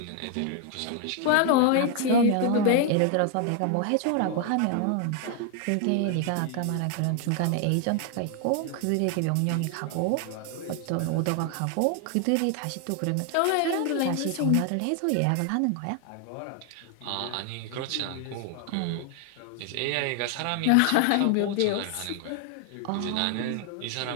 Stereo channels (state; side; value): different; both; correlation 0.00